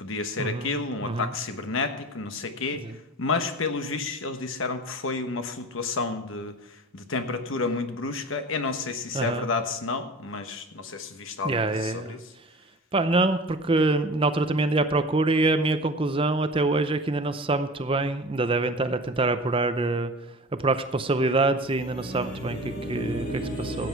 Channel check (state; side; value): normal; both; correlation 0.37